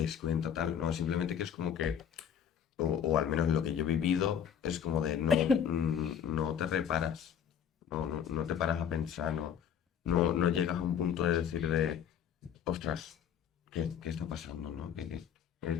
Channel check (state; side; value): quieter; right; 8.5 dB